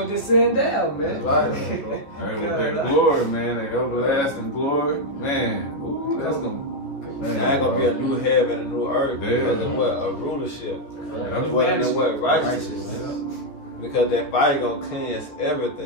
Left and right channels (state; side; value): late; right; 14 ms